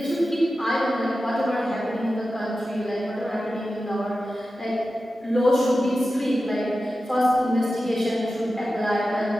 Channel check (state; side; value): normal; both; correlation 0.93